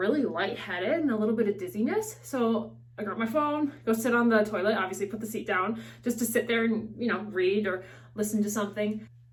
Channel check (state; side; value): identical; both; correlation 1.00